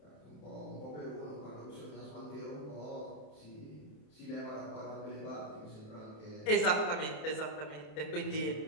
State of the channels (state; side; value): late; right; 27 ms